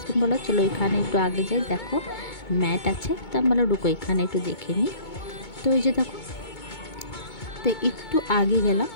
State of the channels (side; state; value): right; late; 2.2 ms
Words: বলো চলো এখানে একটু আগে যাই, দেখো ম্যাট আছে। তো আমি বলো ঢুকো এখানে একটু দেখে নিই। তো এই যে দেখো, তো একটু আগে গেলাম,